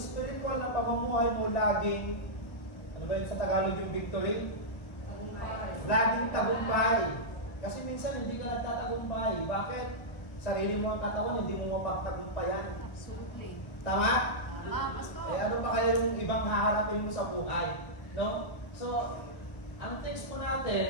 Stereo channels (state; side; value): late; right; 1.1 ms